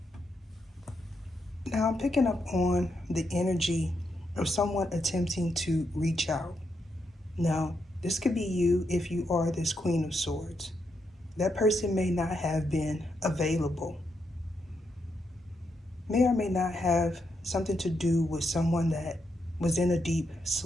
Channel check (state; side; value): normal; both; correlation 0.81